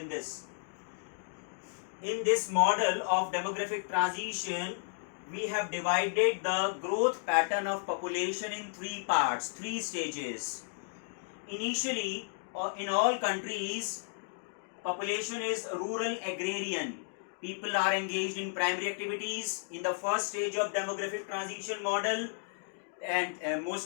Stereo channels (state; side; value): silent; right; digital silence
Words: this model of demographic transition. We have divided the growth pattern of population in three parts, three stages. Initially, in all countries, population is rural agrarian. People are engaged in primary activities in the first stage of demographic transition model, and